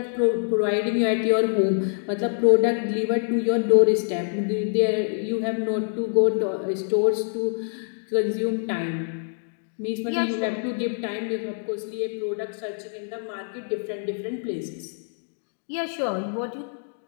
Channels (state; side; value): silent; right; digital silence